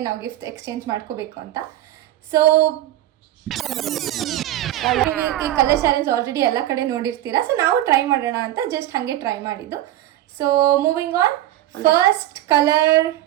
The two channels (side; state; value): left; quieter; 14.0 dB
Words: ನಾವು ಗಿಫ್ಟ್ ಎಕ್ಸ್ಚೇಂಜ್ ಮಾಡ್ಕೋಬೇಕು ಅಂತ. ಸೊ ಈ ಕಲರ್ ಚಾಲೆಂಜ್ ಆಲ್ರೆಡಿ ಎಲ್ಲ ಕಡೆ ನೋಡಿರ್ತೀರಾ, ಸೊ ನಾವು ಟ್ರೈ ಮಾಡೋಣ ಅಂತ ಜಸ್ಟ್ ಹಾಗೆ ಟ್ರೈ ಮಾಡಿದ್ದು. So moving on, first colour